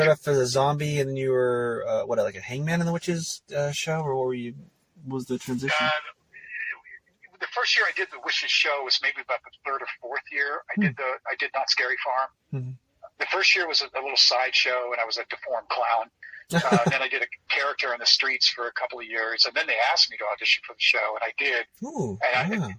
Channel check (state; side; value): identical; both; correlation 1.00